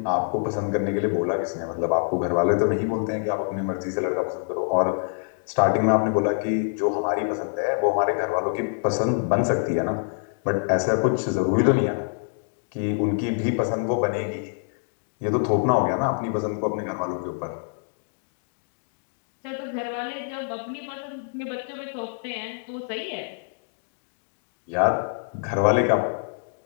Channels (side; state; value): right; silent; digital silence